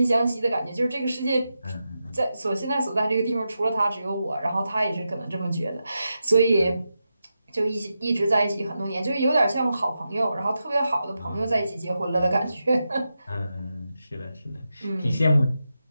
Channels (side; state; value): both; inverted; correlation -0.89